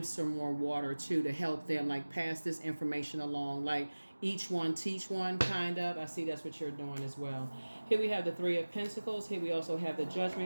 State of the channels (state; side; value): inverted; both; correlation -1.00